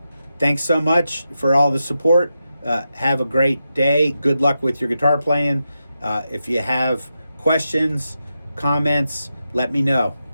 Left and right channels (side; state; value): both; inverted; correlation -0.88